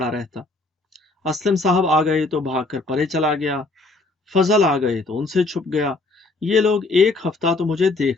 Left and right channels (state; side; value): quieter; right; 3.2 dB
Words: رہتا۔ اسلم صاحب آ گئے تو بھاگ کر پرے چلا گیا، فضل آ گئے تو ان سے چھپ گیا۔ یہ لوگ ایک ہفتہ تو مجھے